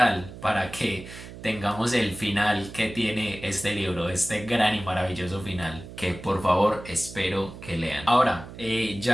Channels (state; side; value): noise; right; hum, 14 dB below the sound